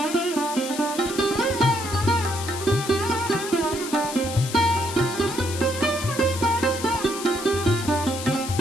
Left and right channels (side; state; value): left; noise; hiss, 9 dB below the sound